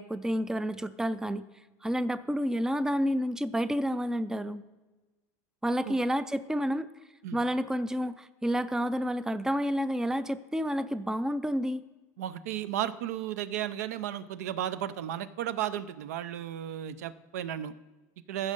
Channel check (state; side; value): normal; both; correlation 0.78